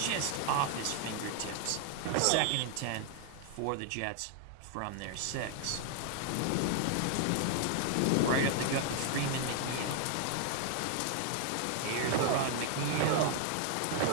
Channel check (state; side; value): different; both; correlation 0.00